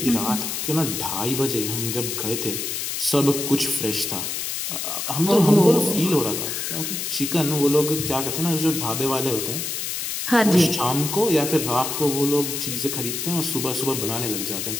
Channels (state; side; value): noise; left; hiss, 3 dB below the sound